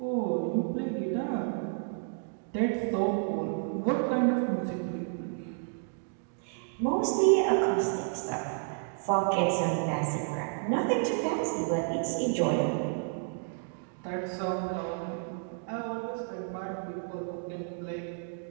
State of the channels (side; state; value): left; silent; 57 dB below the other